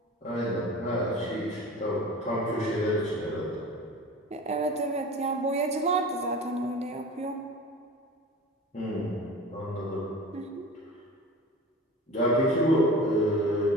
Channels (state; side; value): normal; both; correlation 0.36